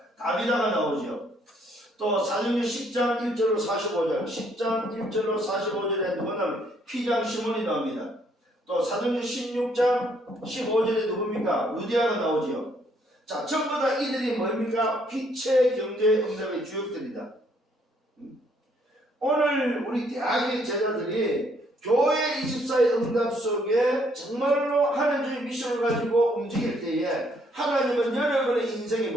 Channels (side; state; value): both; normal; correlation 0.68